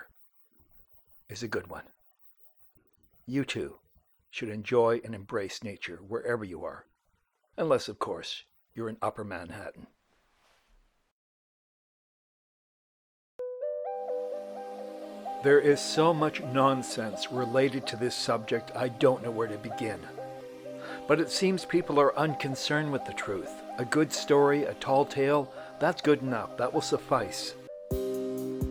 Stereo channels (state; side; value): identical; both; correlation 1.00